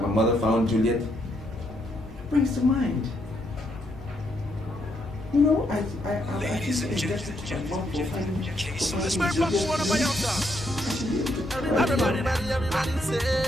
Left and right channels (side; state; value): both; normal; correlation 0.76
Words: my mother found Juliet, it brings to mind. You know, Ladies and gentlemen,